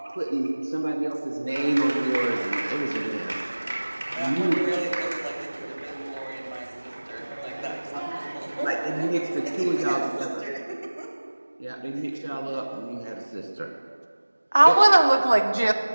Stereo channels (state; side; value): inverted; both; correlation -1.00